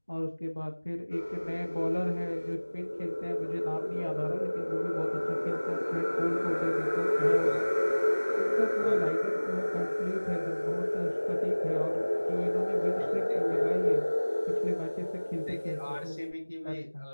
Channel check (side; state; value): both; inverted; correlation -1.00